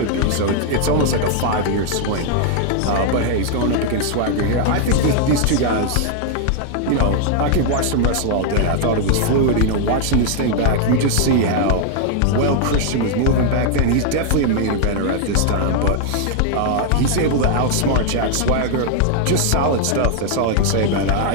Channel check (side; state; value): both; different; correlation 0.00